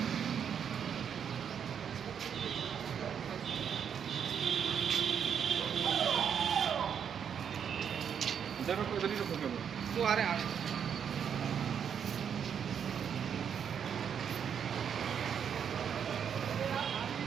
वो आ रहे हैं।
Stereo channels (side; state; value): left; quieter; 7.9 dB